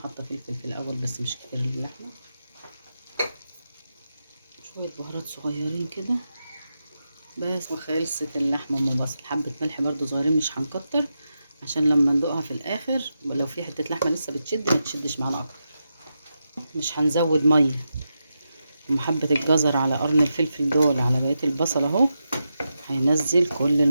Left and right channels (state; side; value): inverted; both; correlation -0.88